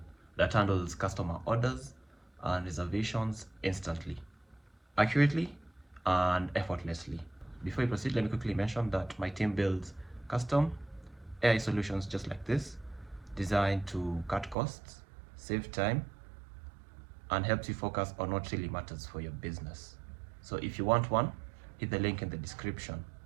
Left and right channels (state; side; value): drops out; left; at 14.6 s